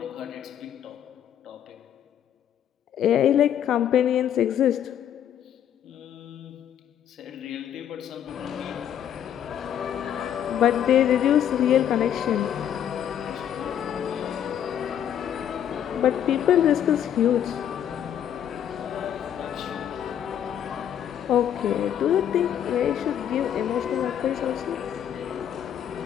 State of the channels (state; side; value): quieter; right; 9.8 dB